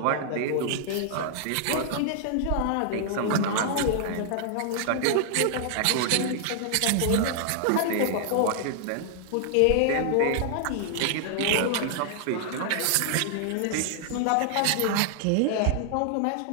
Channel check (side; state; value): both; different; correlation 0.00